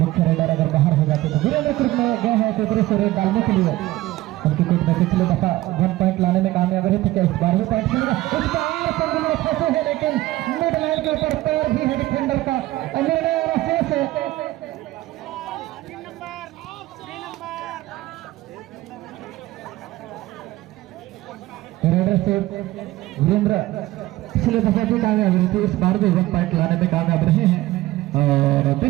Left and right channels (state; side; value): quieter; left; 17.1 dB